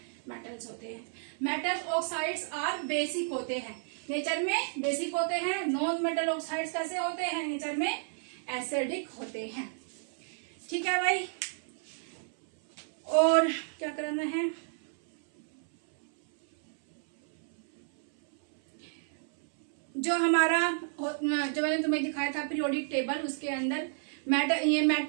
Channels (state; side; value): silent; left; 57 dB below the other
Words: मेटल्स होते हैं। मेटल ऑक्साइड्स आर बेसिक होते हैं, नेचर में बेसिक होते हैं। नॉन मेटल ऑक्साइड्स कैसे होते हैं, नेचर में एसिडिक होते हैं। ठीक है भाई, और क्या करना है, जो हमारा जो मैंने तुम्हें दिखाया था पीरियोडिक टेबल, उसके अंदर ये